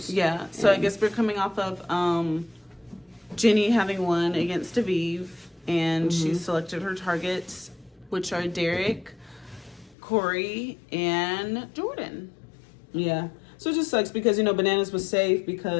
Yeah. So I guess we're coming off of Jenny having won against Aviv, and she selected her targets, which are Derek, Corey, and Jordan. Yeah. So it just sucks because, Bananas was safe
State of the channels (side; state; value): right; drops out; at 10.0 s